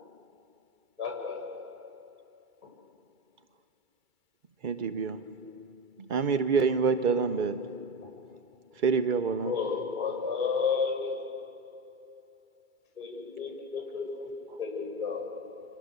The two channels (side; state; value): left; late; 2.3 ms